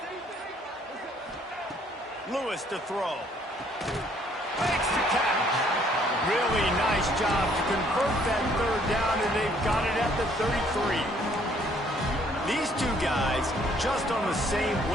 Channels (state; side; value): normal; both; correlation 0.63